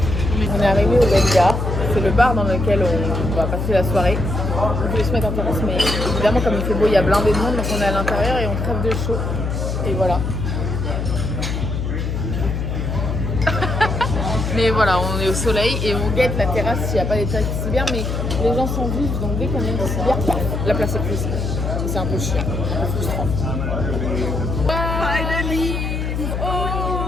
On est arrivé au Belia, c'est le bar dans lequel on va passer la soirée. On voulait se mettre en terrasse, mais évidemment, comme il fait beau, il y a blindé de monde, donc on est à l'intérieur et on crève de chaud. Et voilà. Mais voilà, on est au soleil et on guette la terrasse s'il n'y a pas des taxis bien, mais Les gens sont vifs, donc dès qu'on est une bière, la place est prise. C'est un peu chiant, un peu frustrant. Finally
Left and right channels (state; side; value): noise; left; hum, 2 dB below the sound